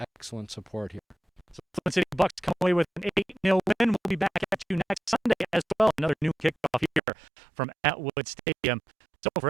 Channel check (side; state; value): left; drops out; at 7.0 s